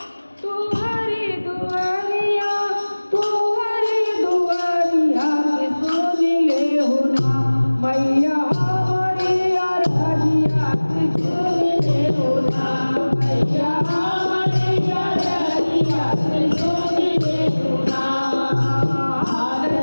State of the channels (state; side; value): inverted; both; correlation -1.00